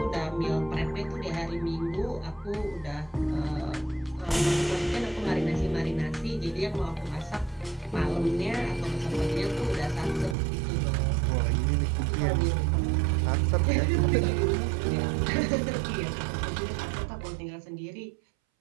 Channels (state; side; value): drops out; left; at 10.4 s